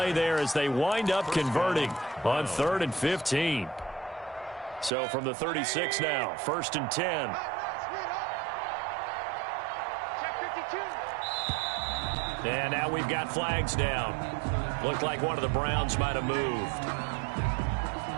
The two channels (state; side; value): drops out; left; at 4.9 s